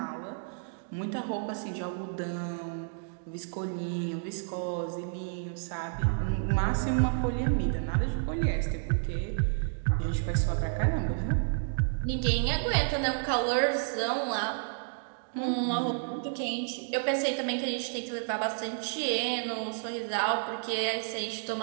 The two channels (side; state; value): left; silent; digital silence